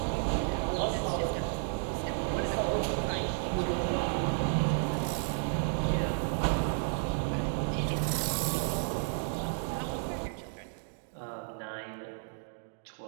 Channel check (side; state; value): left; silent; digital silence